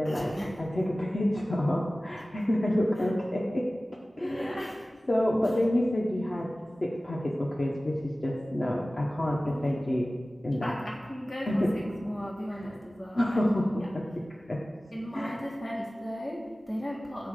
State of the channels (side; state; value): both; normal; correlation 0.97